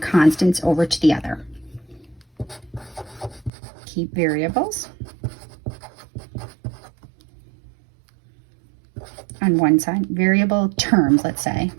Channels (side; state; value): left; drops out; at 3.5 s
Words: over to the other. Keep variables on one side. Variable terms, let's say,